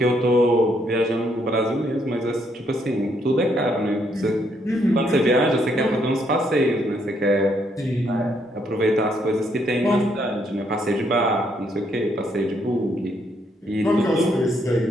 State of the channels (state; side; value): normal; both; correlation 0.73